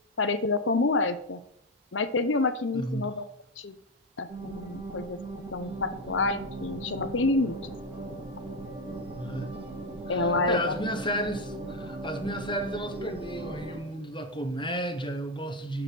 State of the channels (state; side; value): normal; both; correlation 0.10